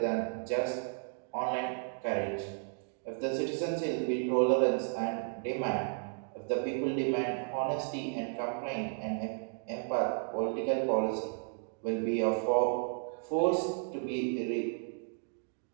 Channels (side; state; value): left; silent; 55 dB below the other